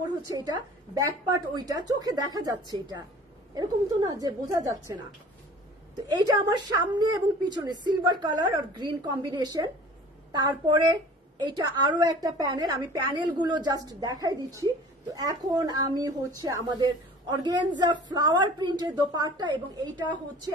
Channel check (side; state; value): both; normal; correlation 0.45